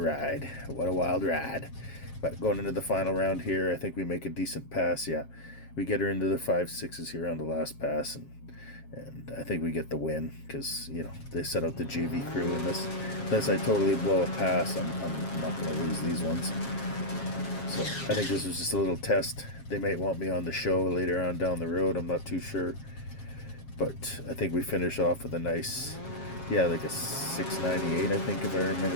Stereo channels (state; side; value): late; right; 7.4 ms